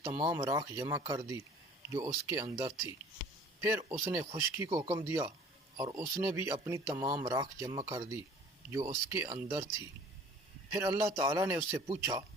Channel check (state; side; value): normal; both; correlation 0.50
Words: تمام راکھ جمع کر دی جو اس کے اندر تھی۔ پھر اس نے خشکی کو حکم دیا اور اس نے بھی اپنی تمام راکھ جمع کر دی جو اس کے اندر تھی۔ پھر اللہ تعالیٰ نے اس سے پوچھا،